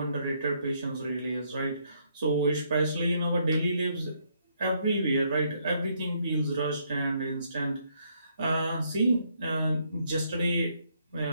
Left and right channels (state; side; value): inverted; both; correlation -0.72